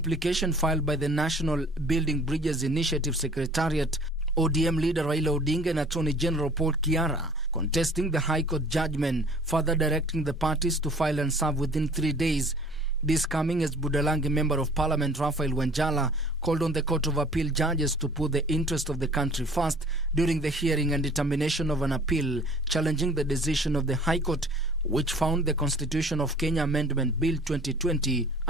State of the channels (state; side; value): normal; both; correlation 0.50